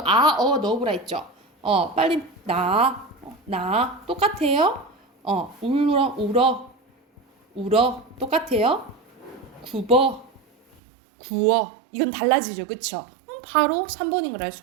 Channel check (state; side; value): drops out; left; at 10.8 s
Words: 넣어보라 했죠. 빨리 나 똑같아요. 울어 똑같아요. 구워 이건 달라지죠. 그쵸? 바로 3번인 걸 알